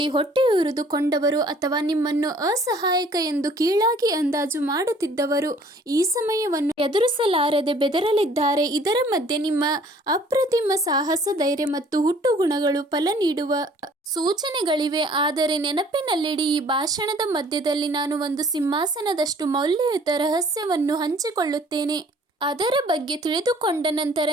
ಹೊಟ್ಟೆಯುರಿದುಕೊಂಡವರು ಅಥವಾ ನಿಮ್ಮನ್ನು ಅಸಹಾಯಕ ಎಂದು ಕೀಳಾಗಿ ಅಂದಾಜು ಮಾಡುತ್ತಿದ್ದವರು ಈ ಸಮಯವನ್ನು ಎದುರಿಸಲಾರದೆ ಬೆದರಲಿದ್ದಾರೆ. ಇದರ ಮಧ್ಯೆ ನಿಮ್ಮ ಅಪ್ರತಿಮ ಸಾಹಸ, ಧೈರ್ಯ ಮತ್ತು ಹುಟ್ಟುಗುಣಗಳು ಫಲ ನೀಡುವ ಸೂಚನೆಗಳಿವೆ. ಆದರೆ ನೆನಪಿನಲ್ಲಿಡಿ, ಈ ಭಾಷಣದ ಮಧ್ಯದಲ್ಲಿ ನಾನು ಒಂದು ಸಿಂಹಾಸನದಷ್ಟು ಮೌಲ್ಯಯುತ ರಹಸ್ಯವನ್ನು ಹಂಚಿಕೊಳ್ಳುತ್ತೇನೆ. ಅದರ ಬಗ್ಗೆ ತಿಳಿದುಕೊಂಡ ನಂತರ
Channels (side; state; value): both; normal; correlation 0.55